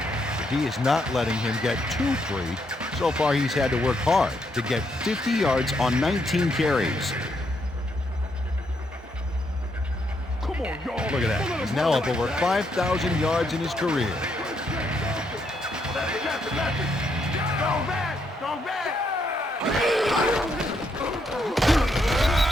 he is not letting him get too free. So far, he's had to work hard to get 50 yards on 19 carries. Come on, y'all. Look at that. He's now up over 5,000 yards in his career. Go back!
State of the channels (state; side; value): normal; both; correlation 0.77